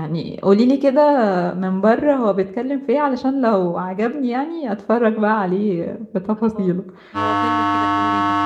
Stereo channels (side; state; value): both; identical; correlation 1.00